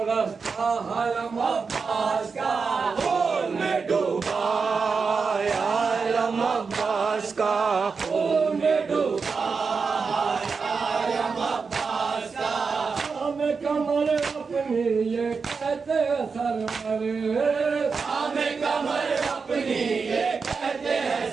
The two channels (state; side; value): quieter; left; 5.1 dB